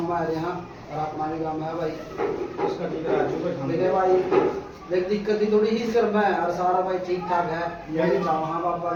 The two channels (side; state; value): both; identical; correlation 1.00